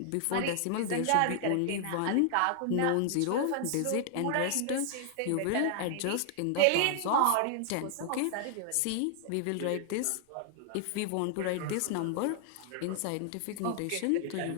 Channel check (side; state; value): both; different; correlation 0.00